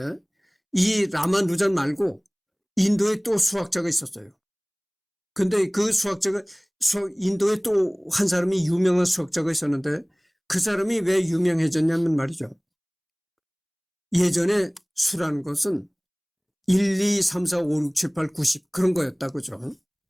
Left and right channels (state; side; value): identical; both; correlation 1.00